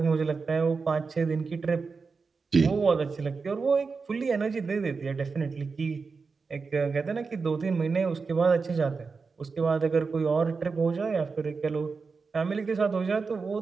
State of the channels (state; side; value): quieter; left; 4.7 dB